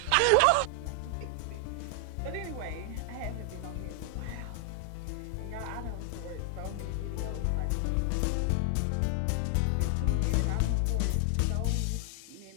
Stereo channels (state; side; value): different; both; correlation 0.00